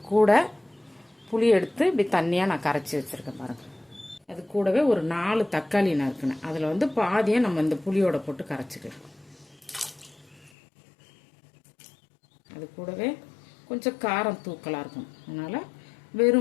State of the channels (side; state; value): right; drops out; at 10.5 s